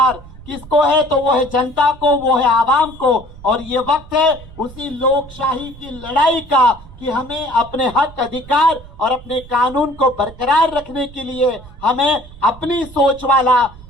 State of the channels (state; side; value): noise; right; rumble, 19 dB below the sound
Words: किसको है? तो वो है जनता को, वो है आवाम को। और ये वक्त है उसी लोकशाही की लड़ाई का कि हमें अपने हक, अधिकार और अपने कानून को बरकरार रखने के लिए हमें अपनी सोच वाला,